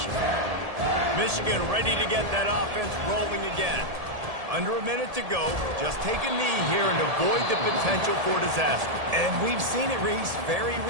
for you. Michigan ready to get that offense rolling again. Under a minute to go. Just take a knee here and avoid the potential for disaster. And we've seen it, Reese, very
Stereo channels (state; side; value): late; left; 1.7 ms